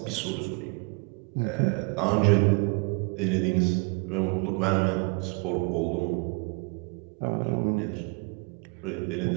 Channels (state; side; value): quieter; left; 32.3 dB